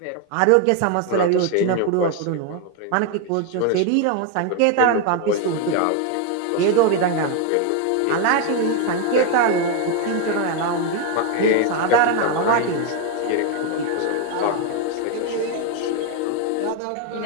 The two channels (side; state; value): both; different; correlation 0.01